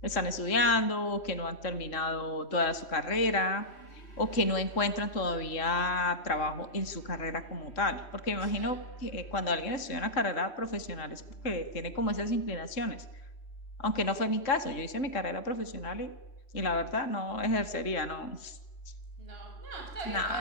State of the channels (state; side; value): late; right; 3.1 ms